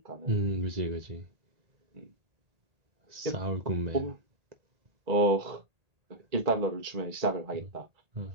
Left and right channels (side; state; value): left; late; 1.8 ms